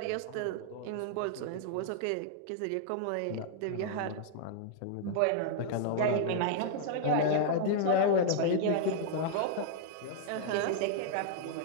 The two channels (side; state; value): both; different; correlation -0.01